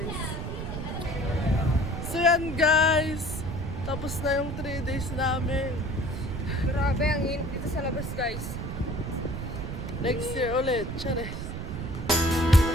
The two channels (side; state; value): right; noise; rumble, 6 dB below the sound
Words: So, yan, guys. Tapos na yung 3 days namin. Grabe, ang init dito sa labas, guys. Next year ulit. Charis.